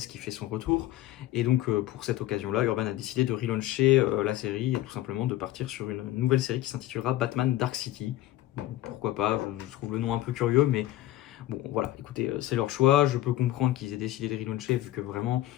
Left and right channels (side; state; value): right; quieter; 15.0 dB